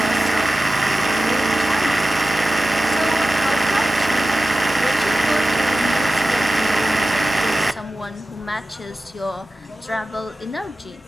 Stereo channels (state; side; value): normal; both; correlation 0.95